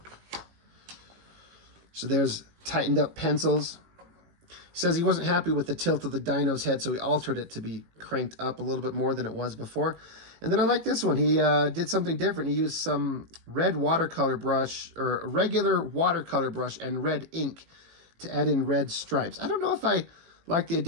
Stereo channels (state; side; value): late; left; 18 ms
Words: So there's tightened up pencils. He says he wasn't happy with the tilt of the dino's head, so he altered it to be cranked up a little bit more than it was before. And then I like this one. He did something different. He used some red watercolor brush, or a regular watercolor brush, and red ink to add in red stripes. I don't know if I like the